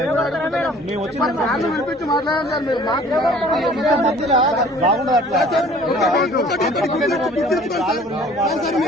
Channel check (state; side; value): normal; both; correlation 0.51